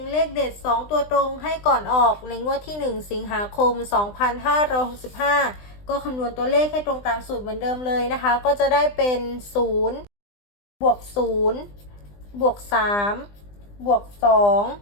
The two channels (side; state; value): right; late; 20 ms